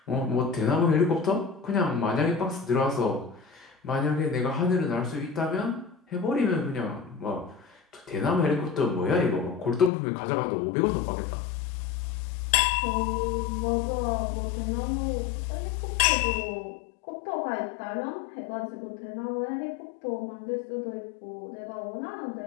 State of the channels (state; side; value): drops out; right; at 9.9 s